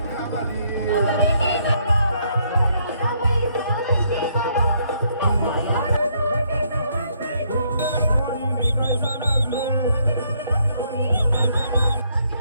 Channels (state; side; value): inverted; both; correlation -0.70